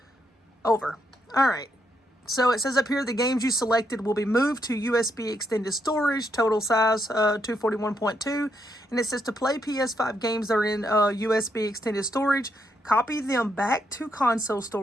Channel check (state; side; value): normal; both; correlation 0.78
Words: over. All right. So it says up here, the games you selected will be moved to USB extended storage, total size 241.2. And it says to play PS5 games that are in USB extended storage, copy them back to console